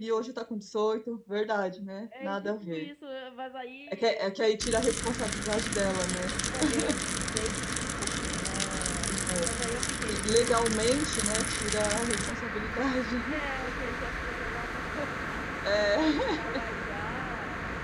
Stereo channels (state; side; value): identical; both; correlation 1.00